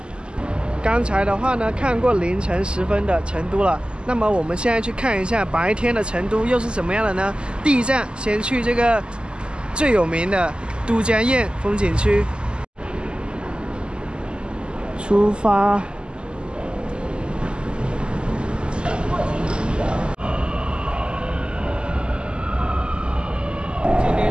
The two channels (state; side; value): late; left; 0.049 ms